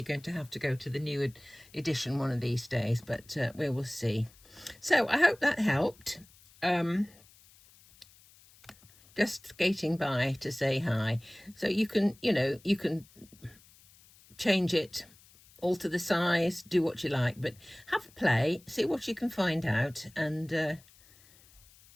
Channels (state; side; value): noise; left; hiss, 26 dB below the sound